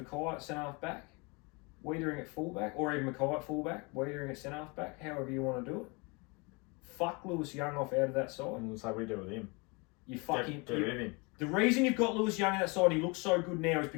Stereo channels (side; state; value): right; quieter; 29.1 dB